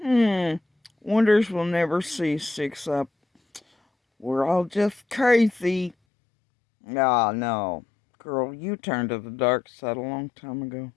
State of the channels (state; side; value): drops out; right; at 6.0 s